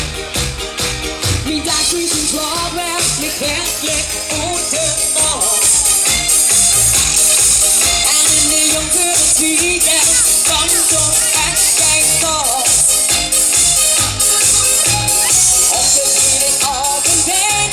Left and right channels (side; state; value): both; identical; correlation 1.00